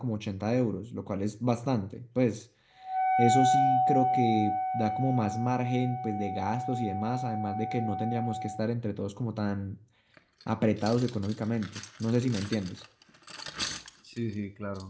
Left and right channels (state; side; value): identical; both; correlation 1.00